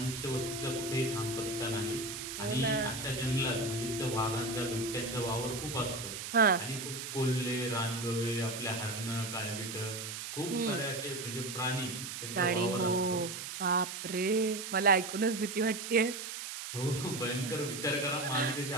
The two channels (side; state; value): right; noise; hiss, 7 dB below the sound